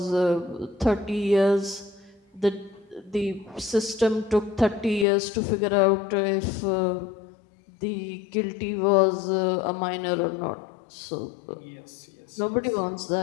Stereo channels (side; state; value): right; drops out; at 5.1 s